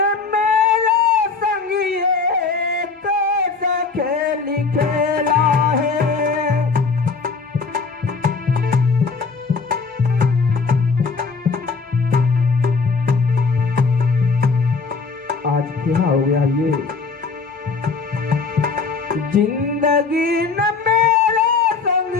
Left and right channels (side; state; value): right; quieter; 4.7 dB